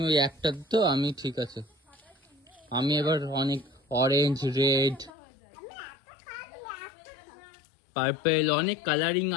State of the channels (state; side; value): drops out; right; at 5.1 s